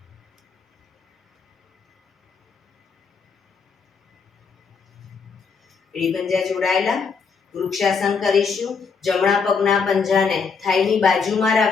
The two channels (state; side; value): quieter; right; 5.4 dB